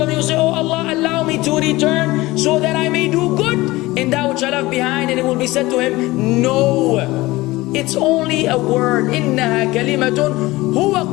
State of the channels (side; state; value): right; quieter; 19.7 dB